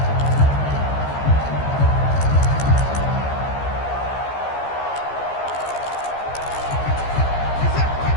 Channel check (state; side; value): late; right; 14 ms